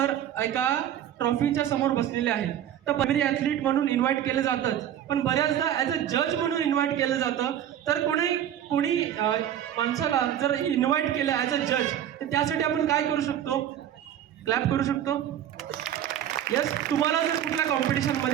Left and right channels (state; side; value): quieter; left; 10.7 dB